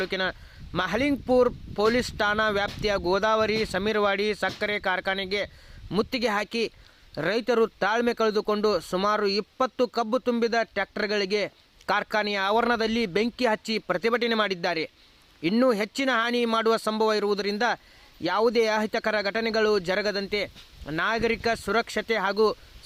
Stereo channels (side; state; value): both; identical; correlation 1.00